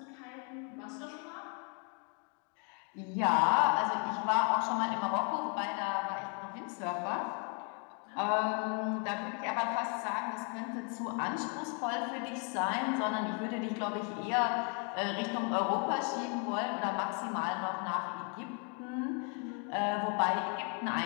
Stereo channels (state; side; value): quieter; right; 37.1 dB